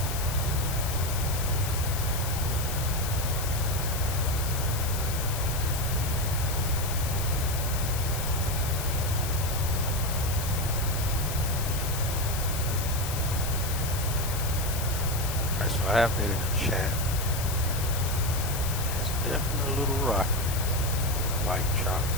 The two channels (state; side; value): noise; left; hiss, 6 dB below the sound